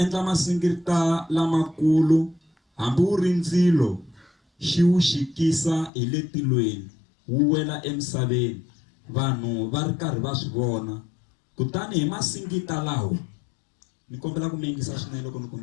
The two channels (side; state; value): right; drops out; at 5.9 s